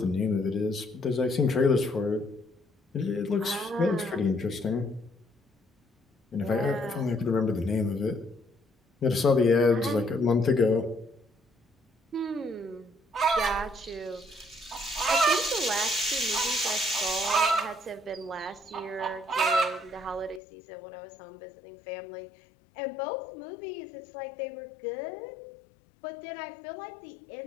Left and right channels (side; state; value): right; drops out; at 20.4 s